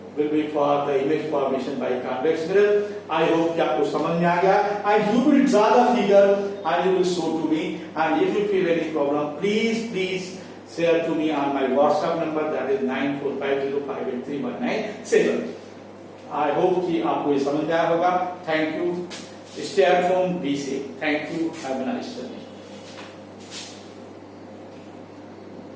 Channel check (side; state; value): both; identical; correlation 1.00